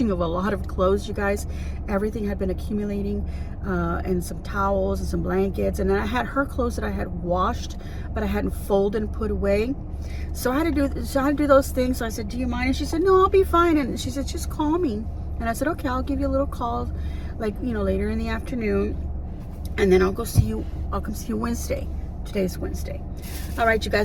of a lot of clothes, you guys. Everything had been accumulating, and some towels and some blankets, and then I had her clothes that I had washed, but I hadn't folded and put away. So I had to do those things. So I said, do you mind? And she said, no, I'll be fine. And she said, just call me. And I said, okay, I'll give you a little call, like, later in the afternoon, and then I'll come see you Wednesday. Today's Wednesday. All right, you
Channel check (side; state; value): both; identical; correlation 1.00